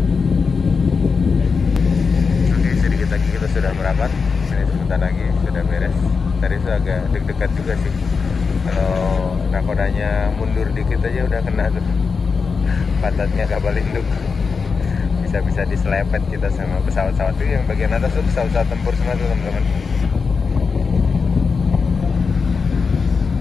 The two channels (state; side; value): quieter; right; 5.1 dB